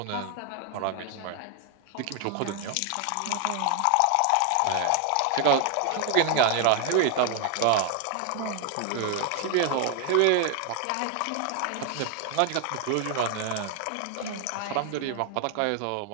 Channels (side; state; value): both; different; correlation 0.00